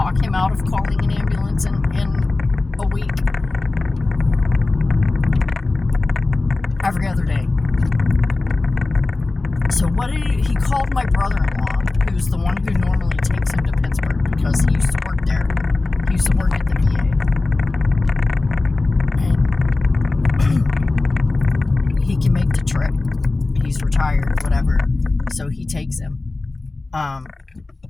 him out of calling an ambulance in a week? Every other day. So what did he called my brother-in-law, who's the one who normally takes him to Pittsburgh because he used to work there. He used to work at the VA. And he can make the trip. He's retired, whatever. So he takes him.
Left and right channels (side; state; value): right; quieter; 3.3 dB